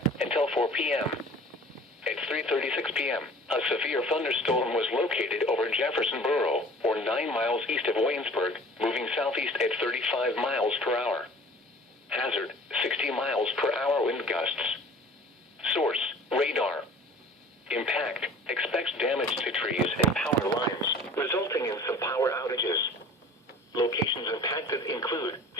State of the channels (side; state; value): both; normal; correlation 0.46